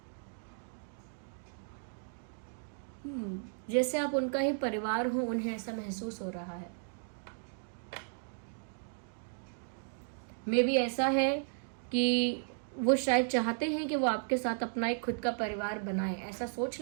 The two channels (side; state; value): left; silent; digital silence